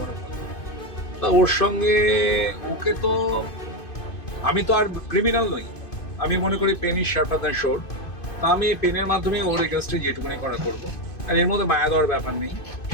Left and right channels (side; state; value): right; late; 2.5 ms